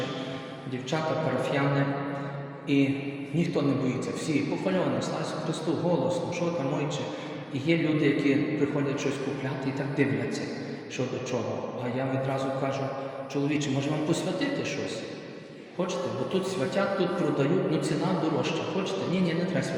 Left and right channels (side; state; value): both; identical; correlation 1.00